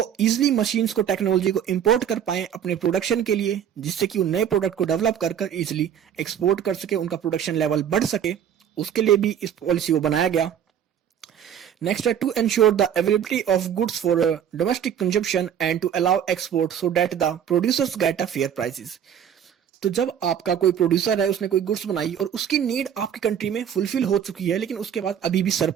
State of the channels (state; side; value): quieter; left; 9.1 dB